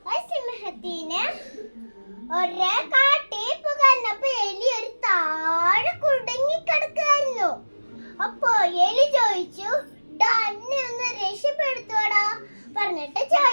ആ സിംഹത്തിന് ഒരു കാട്ടിൽ പുകർന്നപ്പോ എലി ഒരു താഴെ കുടുങ്ങി കിടക്കായിരുന്നു. അപ്പൊ എലി ചോദിച്ചു, എന്നെ ഒന്ന് രക്ഷപ്പെടുത്തോടാ പറഞ്ഞിട്ട്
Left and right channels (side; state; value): both; inverted; correlation -1.00